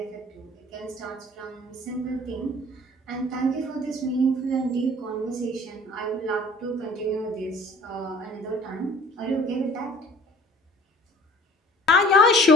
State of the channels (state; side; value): normal; both; correlation 0.49